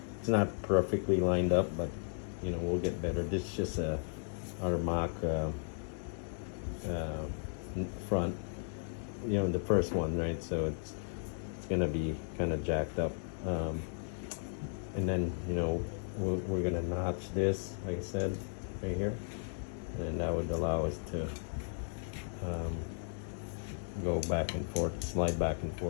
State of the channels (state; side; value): silent; right; digital silence